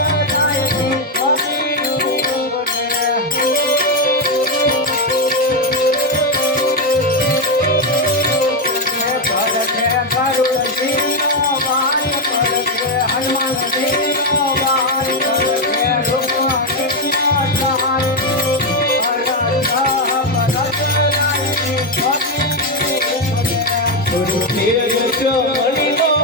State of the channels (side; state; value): both; normal; correlation 0.06